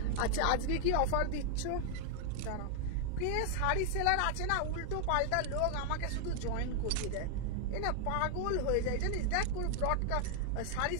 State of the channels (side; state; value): both; different; correlation 0.00